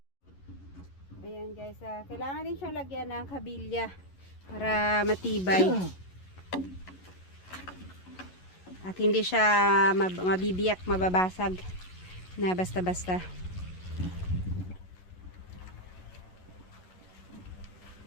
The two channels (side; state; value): right; late; 11 ms